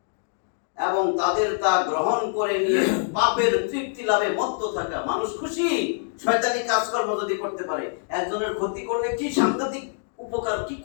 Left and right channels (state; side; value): silent; right; digital silence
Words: এবং তাদের তা গ্রহণ করে নিয়ে পাপের তৃপ্তি লাভে মত্ত থাকা। মানুষ খুশি শয়তানি কাজকর্ম যদি করতে পারে। একজনের ক্ষতি করলে কি সাংঘাতিক উপকার, কি